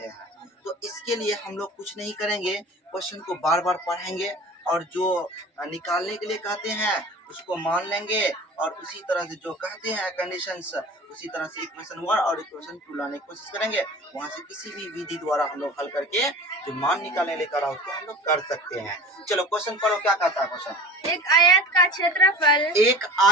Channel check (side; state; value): both; normal; correlation 0.39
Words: हैं। तो इसके लिए हम लोग कुछ नहीं करेंगे, क्वेश्चन को बार बार पढ़ेंगे और जो निकालने के लिए कहते हैं उसको मान लेंगे, और उसी तरह से जो कहते हैं कंडीशंस उसी तरह से इक्वेशन 1 और इक्वेशन 2 लाने की कोशिश करेंगे। वहां से किसी भी विधि द्वारा हम लोग हल करके जो मान निकालने लेकर उसको हम लोग कर सकते हैं। चलो क्वेश्चन पढ़ो, क्या कहता है क्वेश्चन। एक आयत का क्षेत्रफल, एक